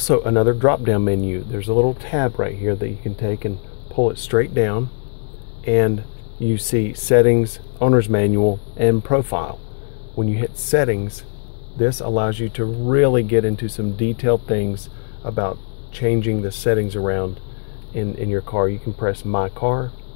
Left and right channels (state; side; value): silent; right; 57 dB below the other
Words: another drop-down menu. There's a little tab right here that you can take and pull it straight down, and you see settings, owner's manual, and profile. When you hit settings, this allows you to really get into some detailed things about changing the settings around in your car. You can press My Car,